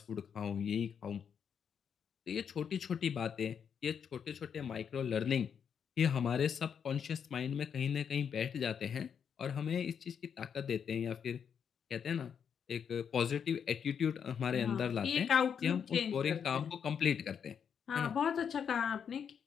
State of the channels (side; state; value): right; quieter; 7.4 dB